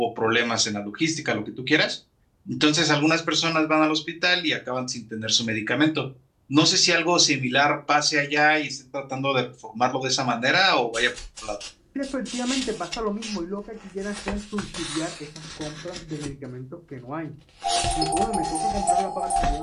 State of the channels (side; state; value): both; identical; correlation 1.00